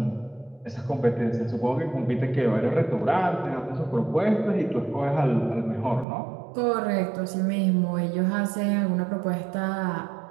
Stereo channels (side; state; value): left; drops out; at 6.1 s